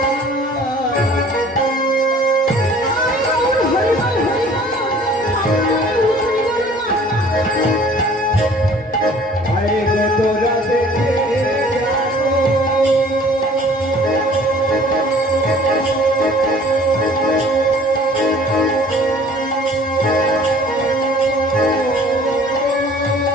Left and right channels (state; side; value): normal; both; correlation 0.51